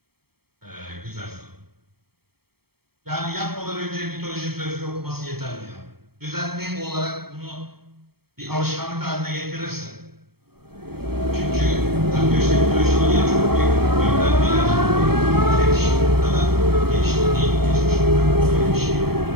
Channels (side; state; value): left; late; 0.95 ms